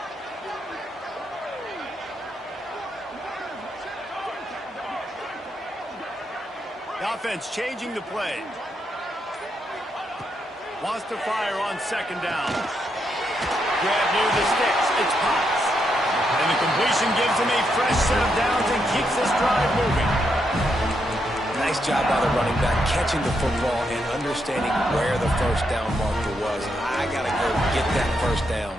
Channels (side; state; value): both; normal; correlation 0.80